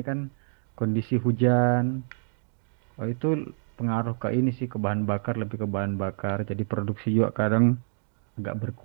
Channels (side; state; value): left; silent; 60 dB below the other